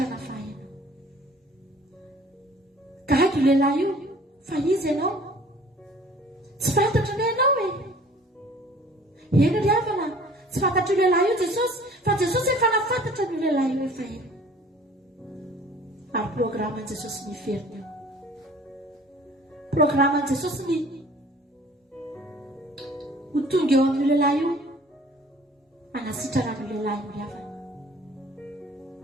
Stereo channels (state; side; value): normal; both; correlation 0.51